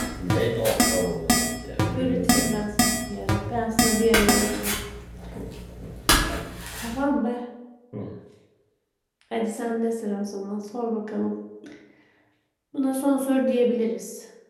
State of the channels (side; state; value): both; identical; correlation 1.00